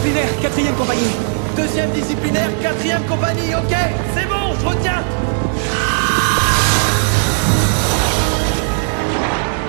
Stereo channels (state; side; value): silent; left; digital silence